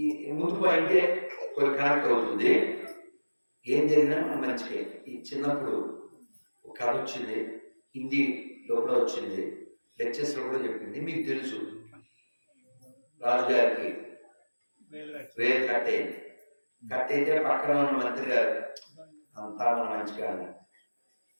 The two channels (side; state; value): both; inverted; correlation -1.00